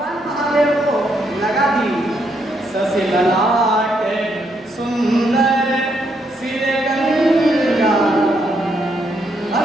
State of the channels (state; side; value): normal; both; correlation 0.76